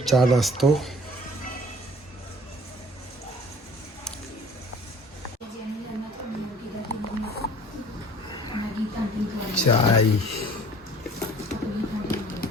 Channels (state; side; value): normal; both; correlation 0.50